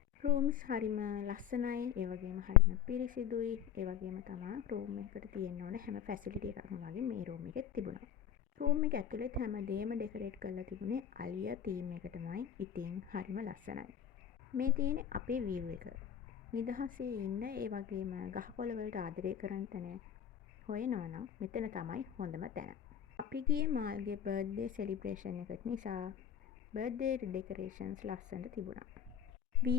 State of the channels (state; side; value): quieter; right; 9.2 dB